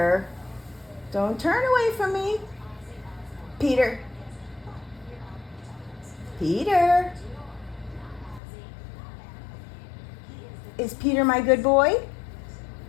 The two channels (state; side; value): drops out; right; at 8.4 s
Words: Don't turn away from me. Peter? Peter? Is Peter my good boy?